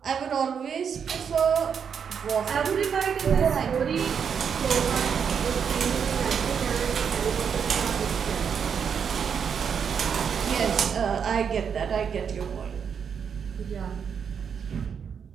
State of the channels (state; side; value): quieter; left; 7.1 dB